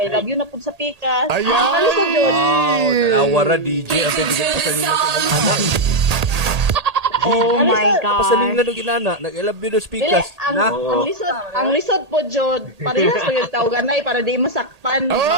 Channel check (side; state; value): left; late; 1.8 ms